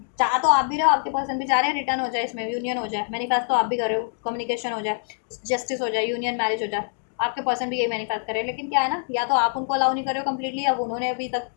चाह तो आप भी रहे हो, आपके पर्सन भी चाह रहे हैं रिटर्न हो जाए, इसमें यूनियन हो जाए, मैनिफेस्ट तो आप भी कर रहे हो, कम्युनिकेशन हो जाए, जस्टिस हो जाए, यूनियन मैरिज हो जाए, आपके पर्सन भी यही मैनिफेस्ट कर रहे हैं, लेकिन क्या है ना, या तो आप उनको अलाउ नहीं कर रहे हो कम्प्लीटली, अब उन्होंने अभी तक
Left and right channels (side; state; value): right; silent; digital silence